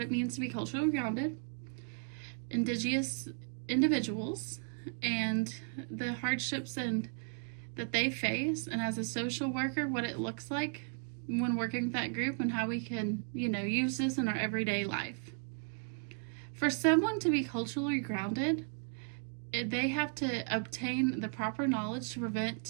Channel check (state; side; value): silent; left; 54 dB below the other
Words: means to be culturally grounded, Indigenous individuals, and the hardships that they face, and as a social worker, what it looks like when working with that group and how we can, use this in our everyday life. For someone to be culturally grounded, they have to obtain the proper knowledge to